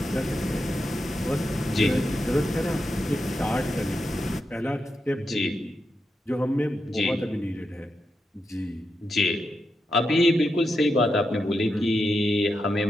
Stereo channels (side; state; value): both; normal; correlation 0.86